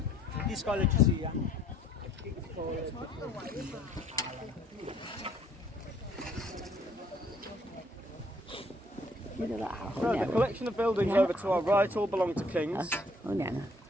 This college you see, yeah? So the collection of buildings over to our right all belong to King's.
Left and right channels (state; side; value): normal; both; correlation 0.63